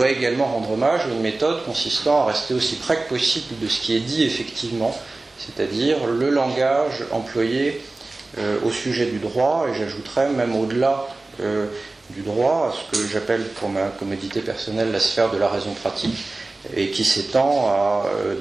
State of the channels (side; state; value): left; quieter; 3.2 dB